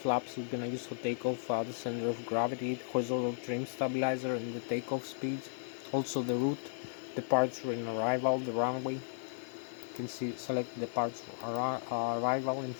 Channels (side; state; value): right; silent; digital silence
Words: we're gonna use for takeoff, the center of gravity, horizontal trim stabilizer, and the takeoff speed. Also the route, departure and arrival, the runway. You can see select departure arrival, and